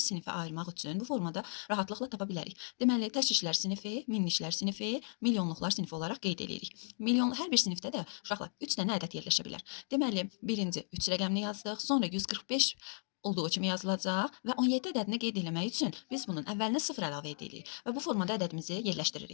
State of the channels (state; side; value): silent; right; 54 dB below the other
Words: sinifə ayırmaq üçün bu formada rahatlıqla tapa bilərik. Deməli, təşkillər sinifi, minliklər sinifi, milyonluqlar sinifi olaraq qeyd edirik. Hər bir sinifdə də uşaqlar 3 dənə ədəd yerləşə bilər. Deməli, birinci 3 rəqəmini yazdıq, sonra 145 olduğu kimi yazılacaq və 17 ədədini qeyd etmək üçün biz bunun əvvəlinə 0 əlavə edirik və bu formada ədədimizi